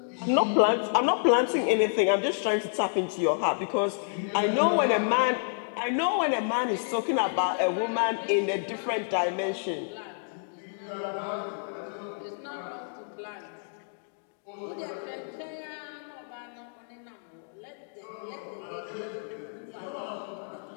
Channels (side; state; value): right; silent; digital silence